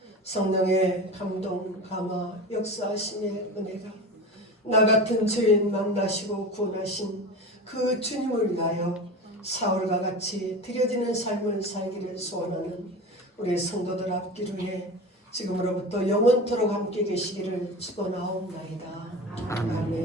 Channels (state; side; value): normal; both; correlation 0.30